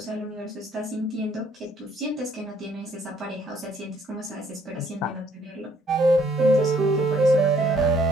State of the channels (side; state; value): both; normal; correlation 0.64